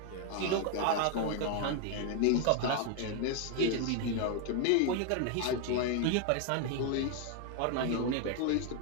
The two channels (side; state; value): both; different; correlation 0.01